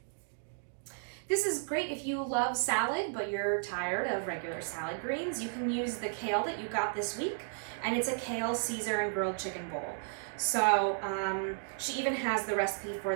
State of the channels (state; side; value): silent; left; digital silence